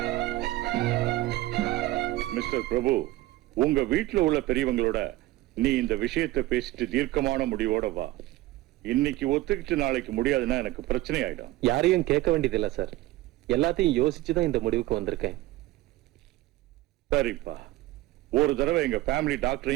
மிஸ்டர் பிரபு, உங்க வீட்டுல உள்ள பெரியவங்களோட நீ இந்த விஷயத்தை பேசிட்டு தீர்க்கமான முடிவோட வா. இன்னைக்கு ஒத்துக்கிட்டு நாளைக்கு முடியாதுன்னா எனக்கு பிரச்சனை ஆயிடும். யாரையும் கேட்க வேண்டியது இல்ல சார், எல்லாத்தையும் யோசிச்சுதான் இந்த முடிவுக்கு வந்திருக்கேன். சரிப்பா, ஒரு தடவை எங்க ஃபேமிலி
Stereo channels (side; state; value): left; quieter; 17.4 dB